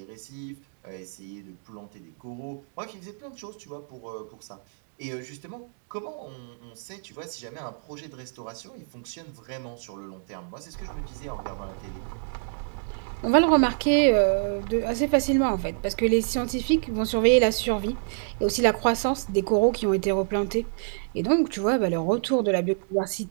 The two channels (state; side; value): silent; left; digital silence